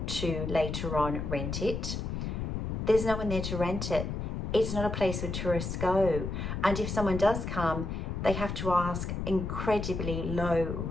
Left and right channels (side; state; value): left; noise; rumble, 3 dB below the sound